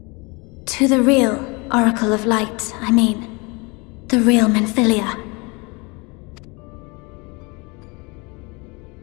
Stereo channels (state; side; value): quieter; right; 28.2 dB